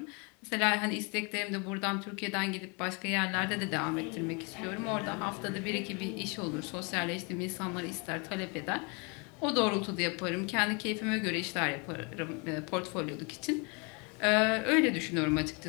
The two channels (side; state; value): right; quieter; 31.8 dB